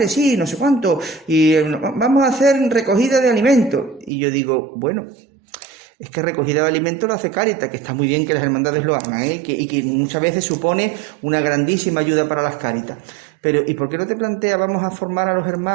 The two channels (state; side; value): drops out; left; at 4.1 s